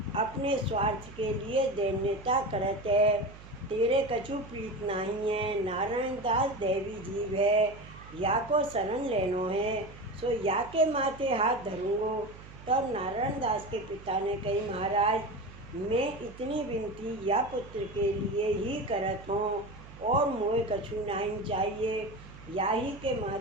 अपने स्वार्थ के लिए दैन्यता करत है। तेरे कछु प्रीत नहीं है। नारायण दास देवी जीव है, या को शरण लेनो है, सो या के माथे हाथ धरूंगो। तब नारायण दास के पिता ने कही, महाराज मैं इतनी विनती या पुत्र के लिए ही करत हूँ और मोए कछु नहीं चाहिए। याही के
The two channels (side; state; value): right; noise; hum, 18 dB below the sound